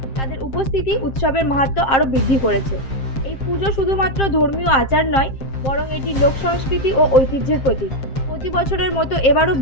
তাদের উপস্থিতি উৎসবের মাহাত্ম্য আরও বৃদ্ধি করেছে। এই পুজো শুধুমাত্র ধর্মীয় আচার নয়, বরং এটি লোক সংস্কৃতি ও ঐতিহ্যের প্রতীক। প্রতি বছরের মতো এবারও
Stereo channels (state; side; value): late; right; 7.5 ms